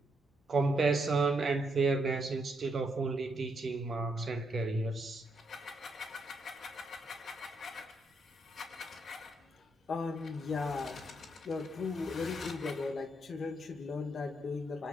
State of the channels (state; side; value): normal; both; correlation 0.77